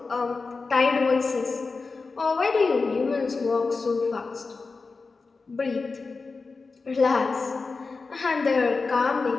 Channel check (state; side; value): quieter; right; 4.2 dB